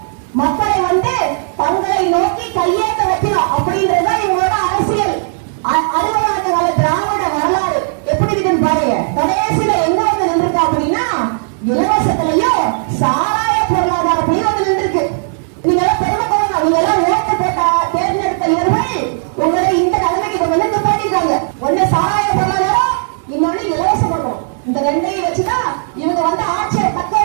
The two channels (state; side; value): silent; left; digital silence